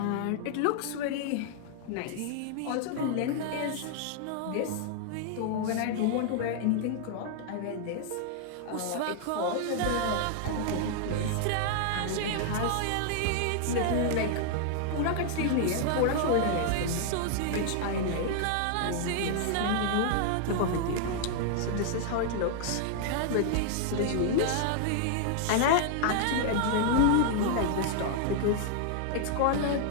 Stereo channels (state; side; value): different; both; correlation 0.00